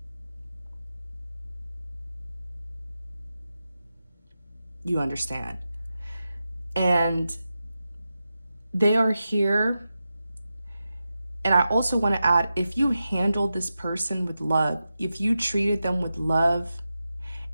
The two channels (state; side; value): inverted; both; correlation -0.91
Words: You understand? And they are here. And I also want to add, if you handled this person with love, if you treated them with love